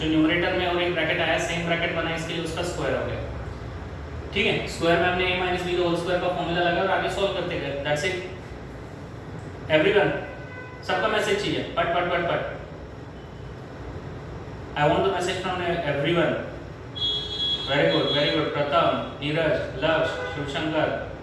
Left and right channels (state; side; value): identical; both; correlation 1.00